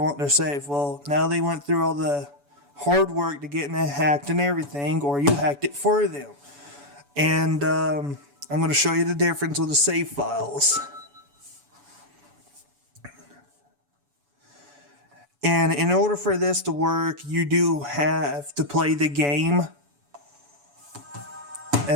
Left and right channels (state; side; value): late; left; 7.0 ms